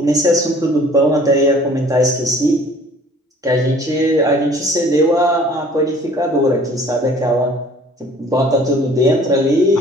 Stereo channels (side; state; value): both; normal; correlation 0.52